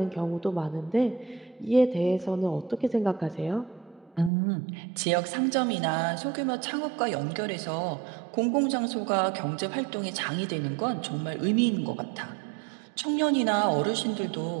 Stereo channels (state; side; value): drops out; left; at 4.3 s